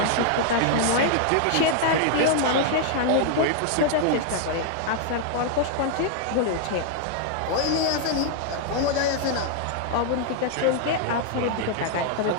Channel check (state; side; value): different; both; correlation 0.00